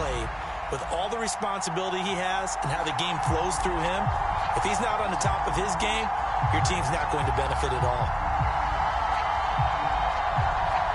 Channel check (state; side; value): identical; both; correlation 1.00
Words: with all the responsibility he has and how the game flows through him, if he's not on the top of his game, your team's not going to benefit at all.